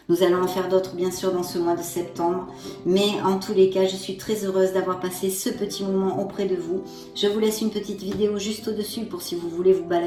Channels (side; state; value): both; identical; correlation 1.00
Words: Nous allons en faire d'autres bien sûr dans ce mois de septembre. Mais en tous les cas, je suis très heureuse d'avoir passé ce petit moment auprès de vous. Je vous laisse une petite vidéo juste au-dessus pour si vous voulez vous